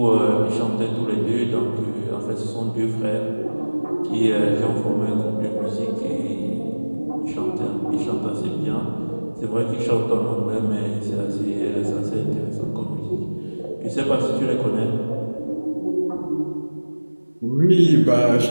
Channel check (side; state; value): both; inverted; correlation -1.00